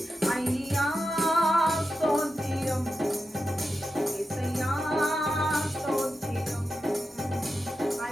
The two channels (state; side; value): normal; both; correlation 0.89